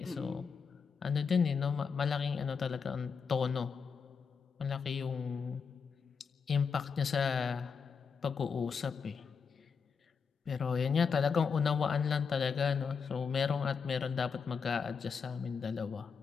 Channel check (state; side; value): quieter; right; 5.9 dB